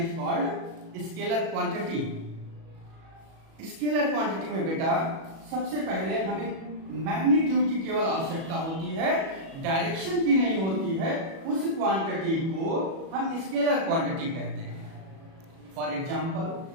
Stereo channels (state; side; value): late; left; 37 ms